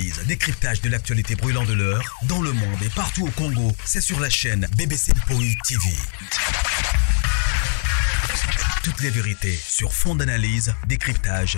décryptage de l'actualité brûlante de l'heure, dans le monde et partout au Congo. C'est sur la chaîne BBC Mpoï TV. Toutes les vérités sur fond d'analyse,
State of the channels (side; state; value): right; silent; digital silence